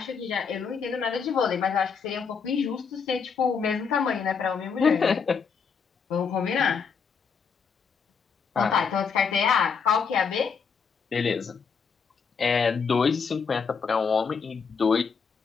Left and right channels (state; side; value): quieter; right; 5.9 dB